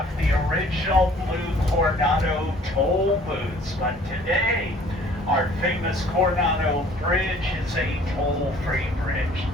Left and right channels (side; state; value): both; normal; correlation 0.54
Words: the original blue Coronado toll booths. But today, our famous Coronado Bridge is a toll-free bridge.